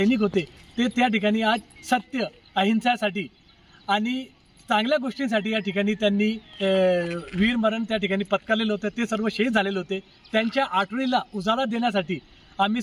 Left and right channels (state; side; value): identical; both; correlation 1.00